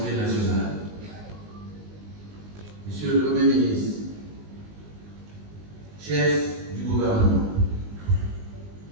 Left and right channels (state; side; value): late; left; 19 ms